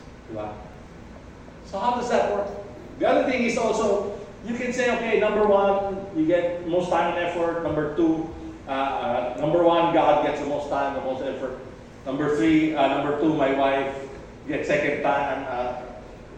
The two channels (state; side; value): identical; both; correlation 1.00